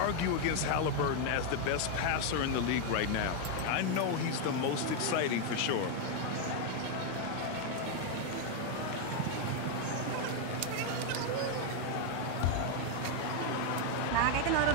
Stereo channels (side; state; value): both; different; correlation 0.01